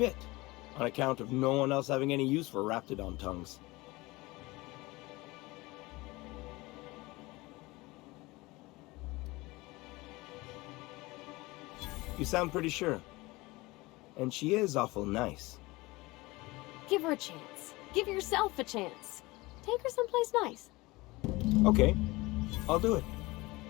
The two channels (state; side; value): quieter; right; 21.8 dB